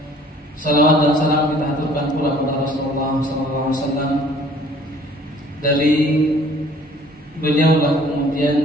salawat dan salam kita aturkan pula kepada Rasulullah SAW. Dari beliaulah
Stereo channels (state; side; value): normal; both; correlation 0.54